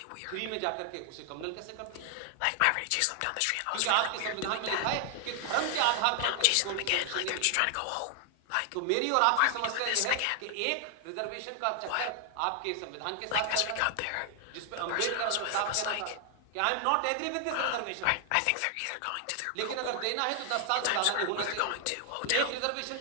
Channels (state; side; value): different; both; correlation 0.00